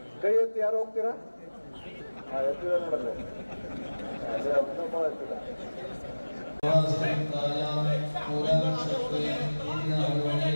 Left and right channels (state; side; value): inverted; both; correlation -1.00